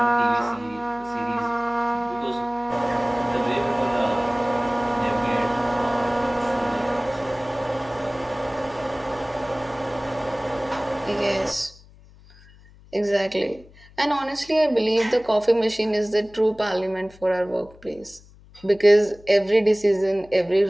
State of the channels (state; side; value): noise; left; hum, 24 dB below the sound